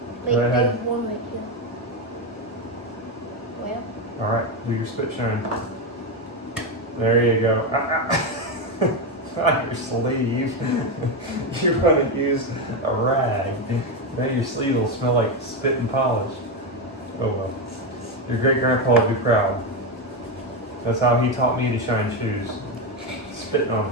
Wait, go ahead. there's one right here. Where? All right, do your spit shine. There you go. On your sleeve. You're going to use a rag. Now your sleeve will smell like spit and polish. Oh well. Your great grandpa would be proud. That's how he taught me to shine shoes. Spitting on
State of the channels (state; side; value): normal; both; correlation 0.10